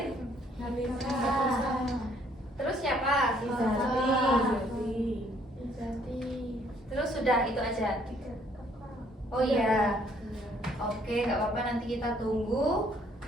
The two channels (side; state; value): both; normal; correlation 0.64